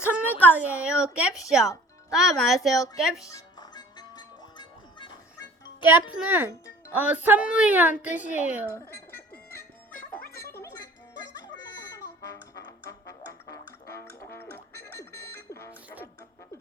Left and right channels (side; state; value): both; normal; correlation 0.49